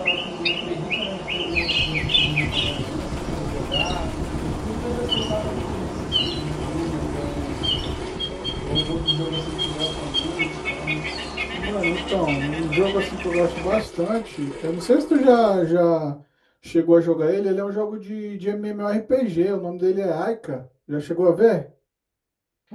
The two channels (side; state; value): both; identical; correlation 1.00